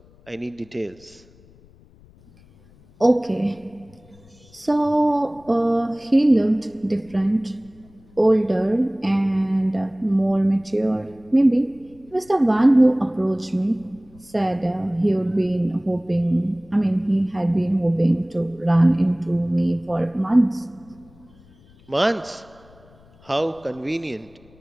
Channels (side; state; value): left; noise; rumble, 27 dB below the sound